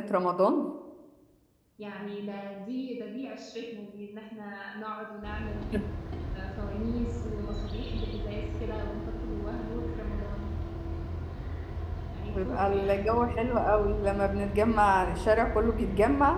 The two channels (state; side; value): identical; both; correlation 1.00